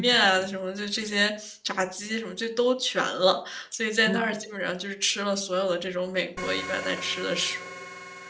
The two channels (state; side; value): identical; both; correlation 1.00